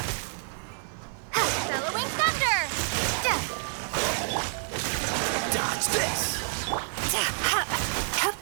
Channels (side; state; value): left; silent; 59 dB below the other